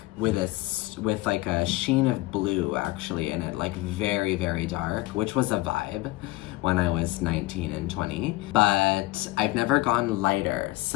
with like a sheen of blue actually in it, like very, very dark, which was a vibe when I was 19 and 20. But I've never gone lighter,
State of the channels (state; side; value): quieter; right; 19.4 dB